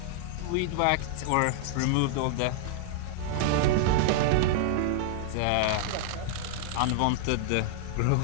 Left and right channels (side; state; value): both; different; correlation -0.01